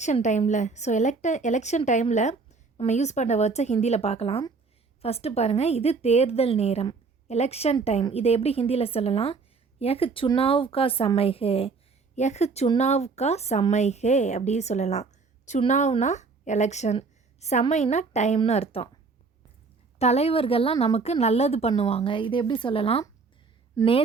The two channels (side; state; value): left; quieter; 4.5 dB